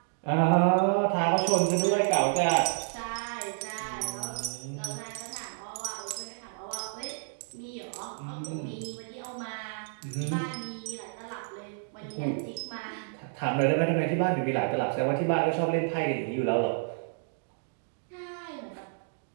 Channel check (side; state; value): left; silent; digital silence